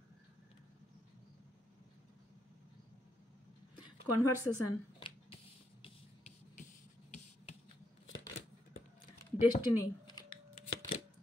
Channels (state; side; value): normal; both; correlation 0.79